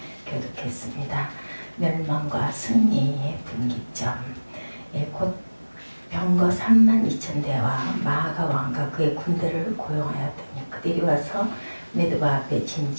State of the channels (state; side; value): inverted; both; correlation -1.00